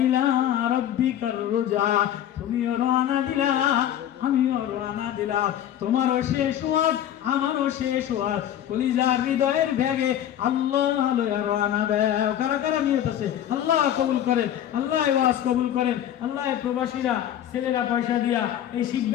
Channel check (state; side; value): quieter; right; 11.1 dB